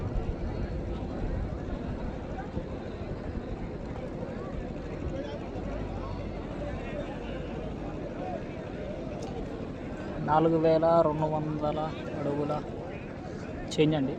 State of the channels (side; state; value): both; identical; correlation 1.00